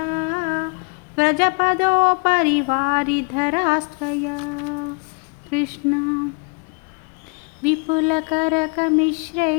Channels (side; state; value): right; quieter; 33.4 dB